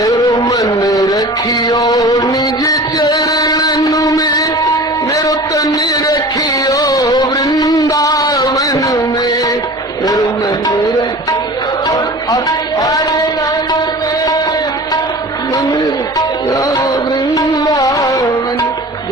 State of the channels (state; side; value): normal; both; correlation 0.39